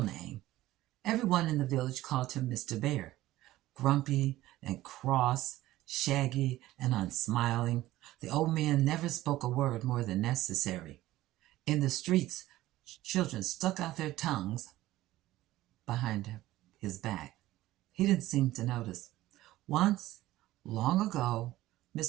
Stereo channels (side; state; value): left; quieter; 16.0 dB